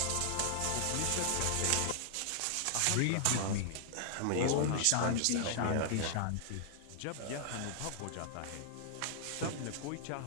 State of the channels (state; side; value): different; both; correlation -0.01